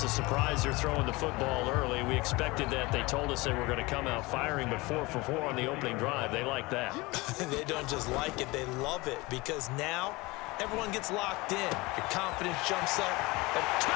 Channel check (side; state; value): right; quieter; 22.9 dB